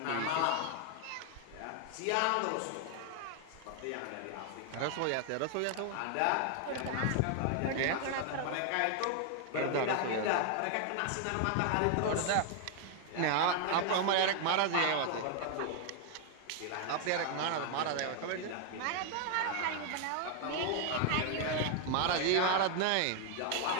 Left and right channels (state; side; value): different; both; correlation 0.00